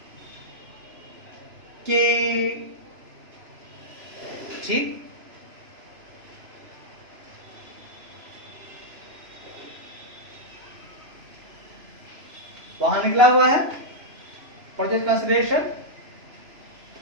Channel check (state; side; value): late; left; 3.0 ms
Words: कि ठीक वहां निकला हुआ है परचेज कंसिडरेशन,